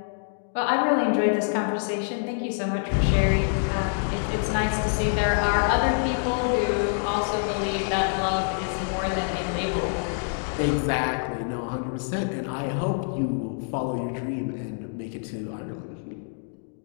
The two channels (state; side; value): silent; right; digital silence